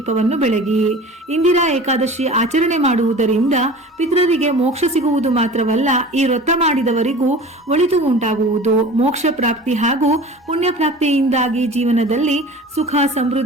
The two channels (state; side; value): normal; both; correlation 0.39